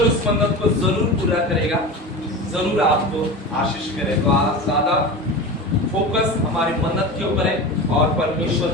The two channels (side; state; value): both; normal; correlation 0.29